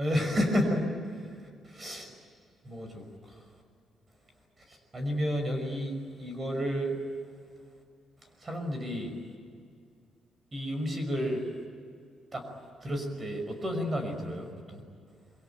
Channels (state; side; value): normal; both; correlation 0.83